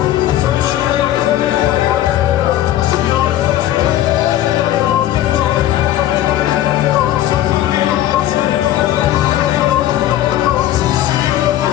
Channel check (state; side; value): quieter; right; 13.2 dB